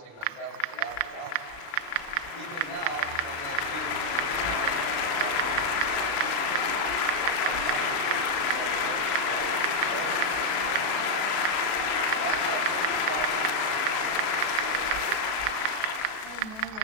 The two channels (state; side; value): late; right; 37 ms